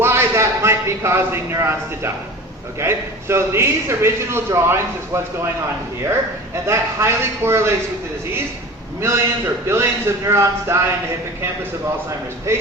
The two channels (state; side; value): normal; both; correlation 0.36